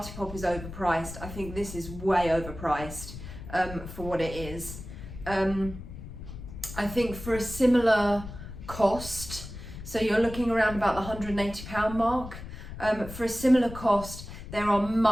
is overpriced, I think this is way overpriced for what it is. I think for a similar cost, so you're looking around about the £180 mark, for a similar cost, there are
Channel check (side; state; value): left; noise; rumble, 11 dB below the sound